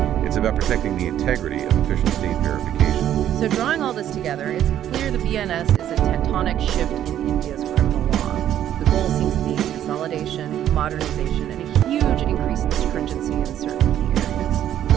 It's about protecting the integrity of official state verification. So drawing all this together, it's clear the BNS is a tectonic shift in India's criminal law. The goal seems to be consolidation, modernization, and a huge increase in stringency in certain key areas.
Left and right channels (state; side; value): quieter; left; 11.1 dB